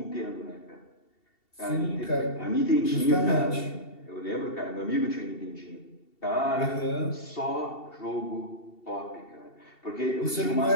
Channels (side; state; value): right; late; 2.7 ms